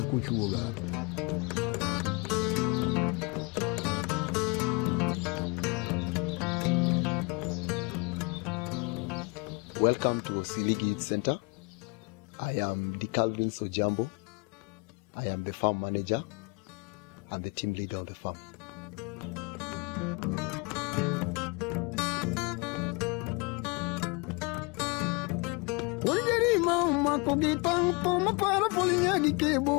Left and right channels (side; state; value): right; quieter; 29.4 dB